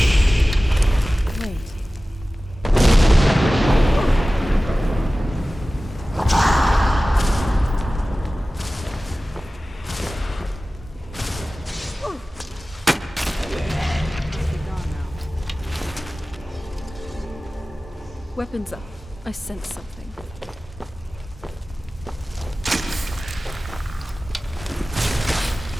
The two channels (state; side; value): normal; both; correlation 0.97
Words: Wait. Weapons up. I sense something.